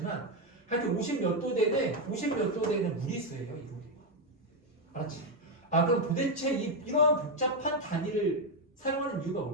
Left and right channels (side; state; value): both; normal; correlation 0.05